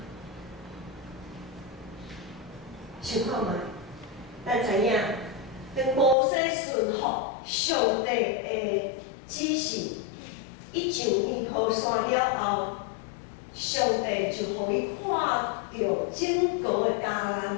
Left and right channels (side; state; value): right; drops out; at 6.2 s